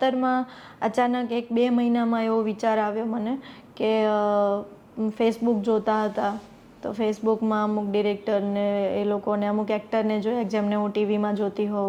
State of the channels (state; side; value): identical; both; correlation 1.00